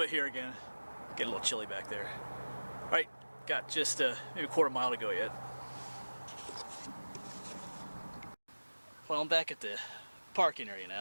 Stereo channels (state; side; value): inverted; both; correlation -1.00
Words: bit here again. Getting a little chilly back there. Alright, got just maybe a quarter mile to go yet. Well, I'm back at the parking area